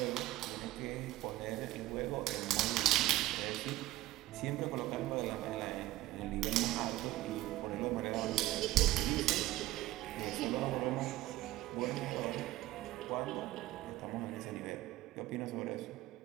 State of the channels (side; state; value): left; quieter; 16.4 dB